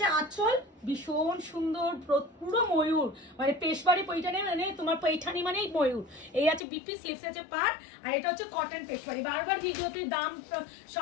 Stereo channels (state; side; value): drops out; right; at 6.6 s